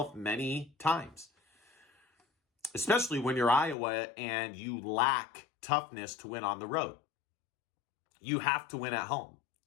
many times. Especially when you're Iowa and you lack toughness to win on the road. You have to win at home.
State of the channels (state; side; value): drops out; right; at 3.8 s